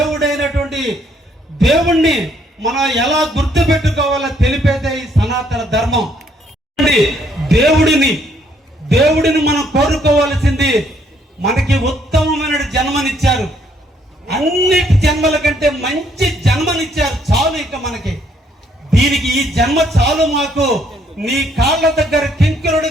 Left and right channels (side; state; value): both; normal; correlation 0.68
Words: దేవుణ్ణి మనం ఎలా గుర్తు పెట్టుకోవాలో తెలిపేదే ఈ సనాతన ధర్మం. దేవుడిని మనం కోరుకోవాల్సింది, మనకి ఉత్తమమైన జన్మనిచ్చారు, అన్నిటి జన్మల కంటే మంచి జన్మనిచ్చారు. చాలు ఇక మనకి, దీనికి ఈ జన్మ చాలు. మాకు నీ కాళ్ళ దగ్గర